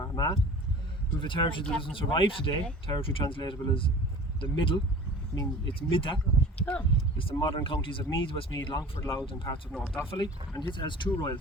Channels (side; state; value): both; normal; correlation 0.41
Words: We have a territory that doesn't survive today, territory translatable as the Middle, meaning it's Midda. It's the modern counties of Meath, Westmeath, Longford, Louth and parts of North Offaly, and it has 2 royal